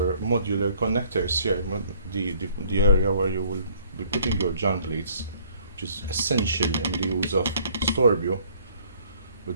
modular connectors here, the area where you will be putting your jump leads, which is essential in the use of Storbju.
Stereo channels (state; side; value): inverted; both; correlation -0.59